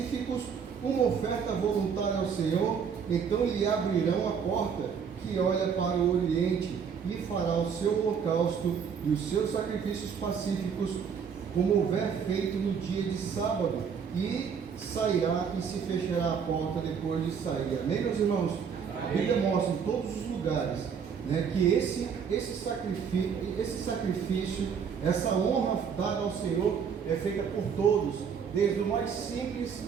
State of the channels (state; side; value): quieter; left; 6.8 dB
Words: uma oferta voluntária ao Senhor, então lhe abrirão a porta que olha para o oriente, e fará o seu holocausto e os seus sacrifícios pacíficos, como houver feito no dia de sábado, e sairá e se fechará a porta depois de sair. Amém, meus irmãos? A Bíblia mostra em todos os lugares, né, que esse sacrifício, essa honra dada ao Senhor é feita por todos, desde o mais simples